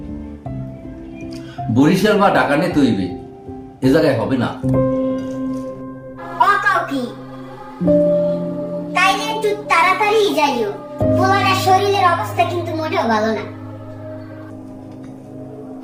বরিশাল বা ঢাকা নিতে হইবে এ জায়গায় হবে না ও কও কি তাইলে একটু তাড়াতাড়ি যাইও পোলাটার শরীরের অবস্থা কিন্তু মোটেও ভালো না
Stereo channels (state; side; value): identical; both; correlation 1.00